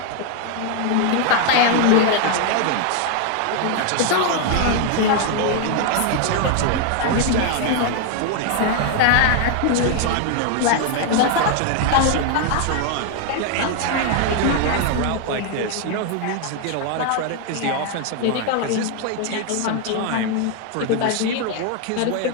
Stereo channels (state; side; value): different; both; correlation 0.00